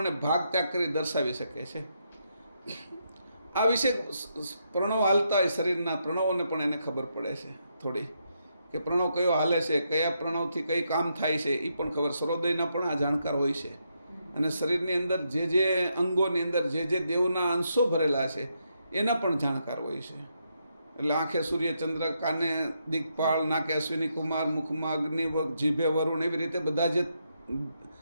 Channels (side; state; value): both; inverted; correlation -0.80